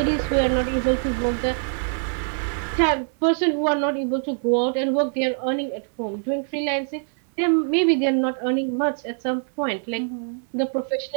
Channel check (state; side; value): silent; left; 63 dB below the other